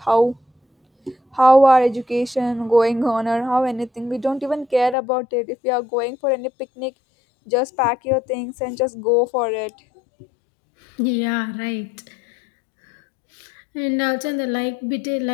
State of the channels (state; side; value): drops out; right; at 5.0 s